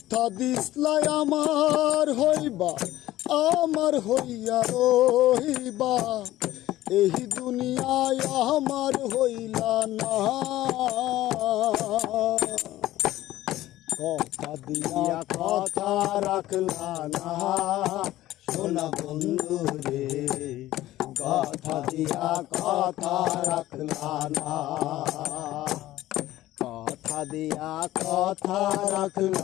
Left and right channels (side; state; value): right; quieter; 15.3 dB